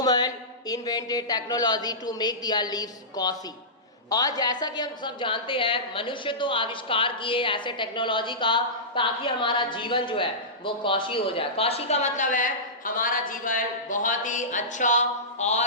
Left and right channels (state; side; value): normal; both; correlation -0.18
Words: invented technology to make their lives cosy. और जैसा कि हम सब जानते हैं मनुष्य तो आविष्कार किए ऐसे टेक्नोलॉजी का ताकि हमारा जीवन जो है वो कौशी हो जाए। कौशी का मतलब है हमारा जीवन बहुत ही अच्छा